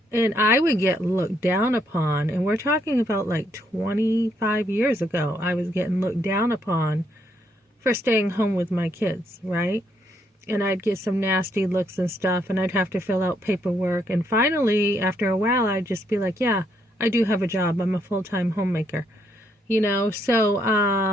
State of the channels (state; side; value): normal; both; correlation 0.74